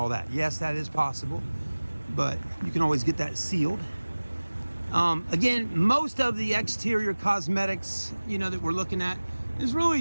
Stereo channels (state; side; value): inverted; both; correlation -1.00